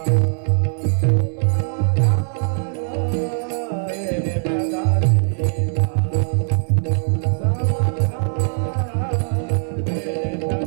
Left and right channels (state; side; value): silent; left; digital silence